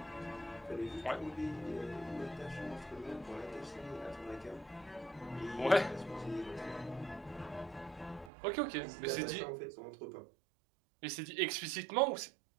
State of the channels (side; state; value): left; drops out; at 8.3 s